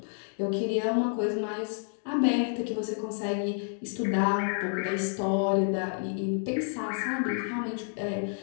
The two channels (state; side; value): silent; right; 58 dB below the other